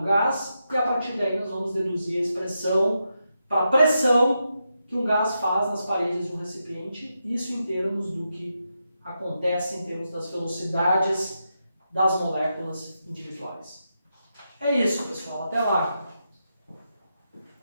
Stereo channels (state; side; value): inverted; both; correlation -0.86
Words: gás, e a partir daí nós vamos deduzir a expressão para a pressão que um gás faz nas paredes de um recipiente, isso em termos do que acontece em termos das velocidades das moléculas individuais. É isso, pessoal. Até lá!